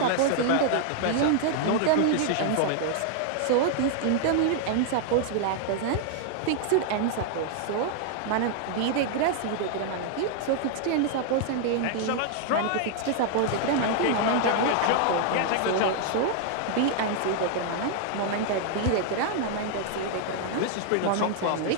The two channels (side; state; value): both; different; correlation 0.00